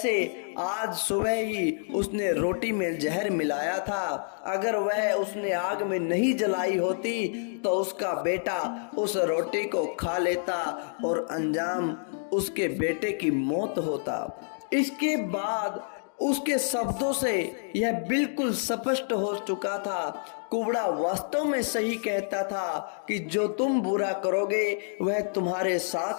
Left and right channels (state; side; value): silent; right; digital silence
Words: आज सुबह ही उसने रोटी में जहर मिलाया था। अगर वह उसने आग में नहीं जलाई होती तो उसका बेटा उस रोटी को खा लेता और अंजाम उसके बेटे की मौत होता। इसके बाद उसके शब्दों से यह बिल्कुल स्पष्ट हो चुका था, कुबड़ा वास्तव में सही कहता था कि जो तुम बुरा करोगे वह तुम्हारे